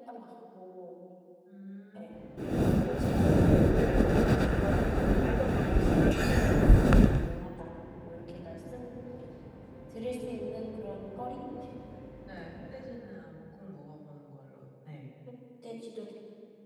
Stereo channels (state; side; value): identical; both; correlation 1.00